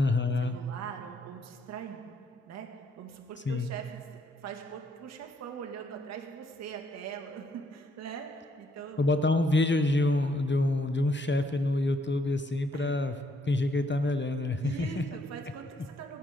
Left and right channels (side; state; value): both; normal; correlation 0.71